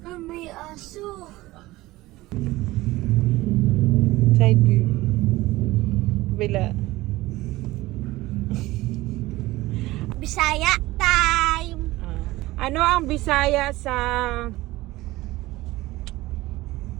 May aso. Side view. Bila. Bisaya time. Ano ang Bisaya sa...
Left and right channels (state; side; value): quieter; left; 18.6 dB